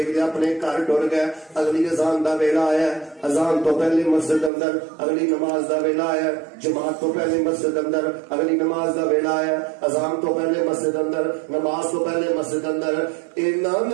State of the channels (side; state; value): left; drops out; at 4.5 s